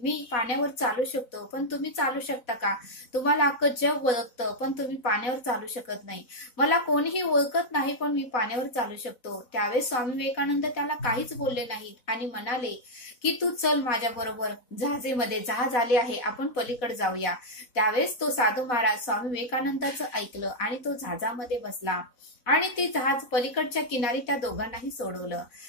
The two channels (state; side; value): late; right; 4.0 ms